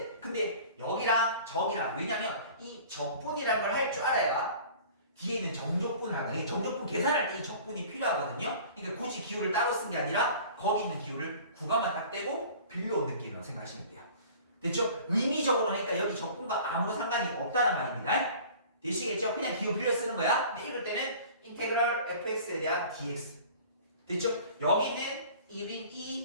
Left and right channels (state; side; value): inverted; both; correlation -0.45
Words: 근데 여기랑 저기랑, 왜냐면 이 적분이라는 걸 할 줄 알아야 뒤에 있는 정적분을 하거든요. 정적분 계산할 때 이 적분이 필요하거든요. 그러니까 굳이 기호를 따로 쓴 게 아니라 거기 있는 기호를 구간만 딱 떼고 빌려온 느낌으로 생각하시면 돼요. 됐죠? 의미적으로 하니까 여기 적분과 아무런 상관이 없다는 말입니다. 되시겠죠? 그냥 기호 빌려 쓰는 거야. 근데 읽을 때는 인테그럴 fx에 대한 dx. 됐죠? 여기는 1인